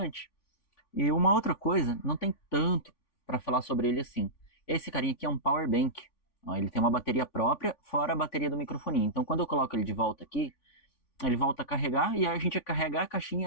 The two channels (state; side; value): late; right; 3.5 ms